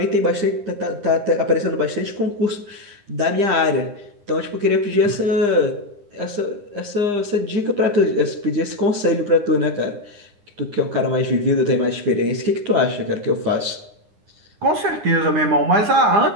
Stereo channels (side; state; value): left; late; 9.8 ms